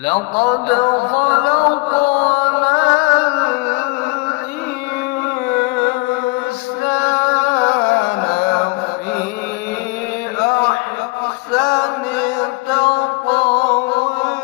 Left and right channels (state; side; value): quieter; right; 26.3 dB